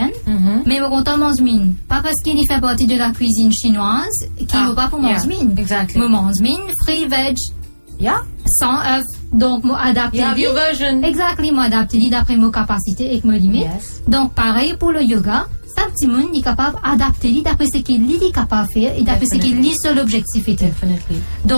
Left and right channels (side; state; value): both; inverted; correlation -1.00